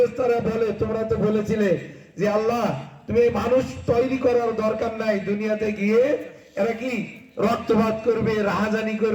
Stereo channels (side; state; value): both; identical; correlation 1.00